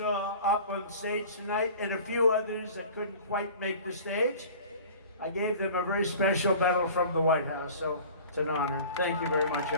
up on stage tonight, and a few others that couldn't quite make the stage, I gave them a very special medal from the White House. So it's an honor. Thank you very much,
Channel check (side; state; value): both; inverted; correlation -0.42